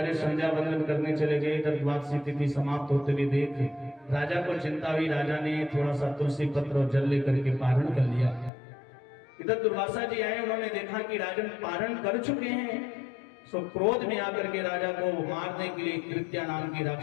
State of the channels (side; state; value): right; drops out; at 8.5 s